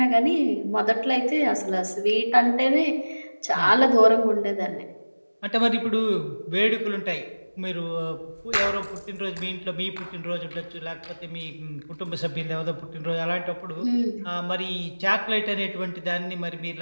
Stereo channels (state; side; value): inverted; both; correlation -1.00